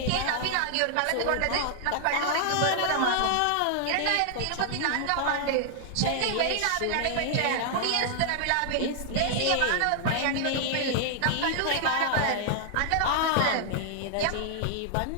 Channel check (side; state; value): both; different; correlation 0.00